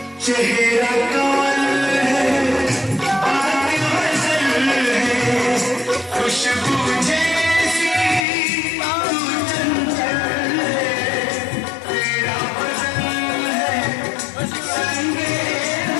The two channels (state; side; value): drops out; right; at 8.2 s